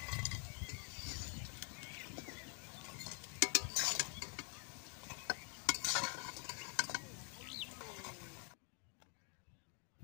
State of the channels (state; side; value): quieter; right; 38.3 dB